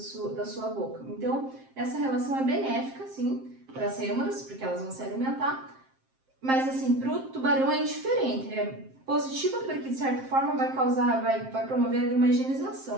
sua boca. Então, essa relação é benéfica, sim, para as rêmoras, porque elas vão se alimentar, mas assim, para o tubarão é indiferente, é positiva porque de certa forma vai promover ali uma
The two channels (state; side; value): late; left; 7.6 ms